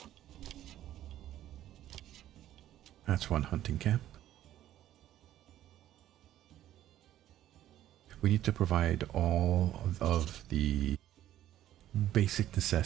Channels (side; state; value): left; quieter; 12.7 dB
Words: That's one hunting camp. We need to provide all of the basic